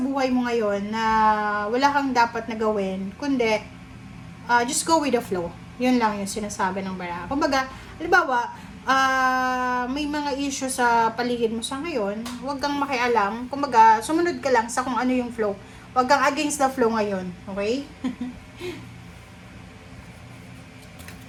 buhay mo ngayon na wala kang dapat na gawin, kundi just go with the flow. Yun lang yung sinasabi ng bara. Kumbaga, halimbawa, may mga issue sa paligid mo sa ngayon, huwag kang makialam. Kumbaga, sumunod ka lang sa kung ano yung flow. Huwag kang against the flow ngayon. Okay?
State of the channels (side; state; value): both; identical; correlation 1.00